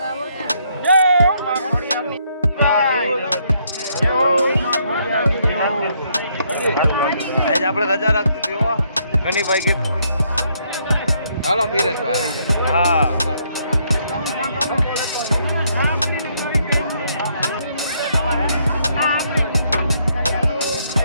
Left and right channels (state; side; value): inverted; both; correlation -0.72